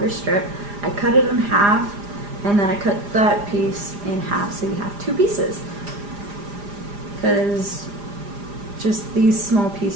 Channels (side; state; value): left; late; 4.9 ms